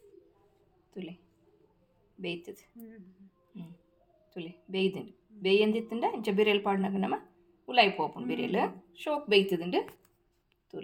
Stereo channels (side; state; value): both; identical; correlation 1.00